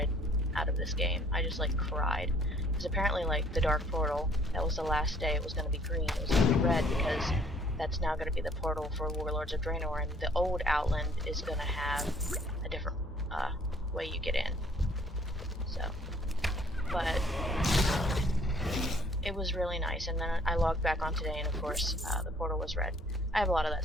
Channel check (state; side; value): normal; both; correlation 0.60